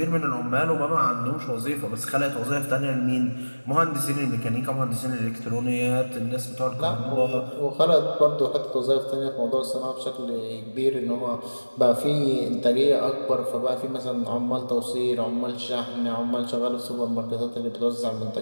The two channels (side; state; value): both; inverted; correlation -1.00